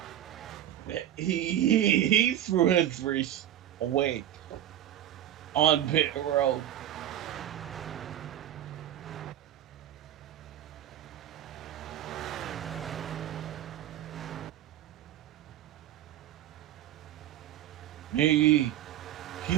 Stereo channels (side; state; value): left; quieter; 11.9 dB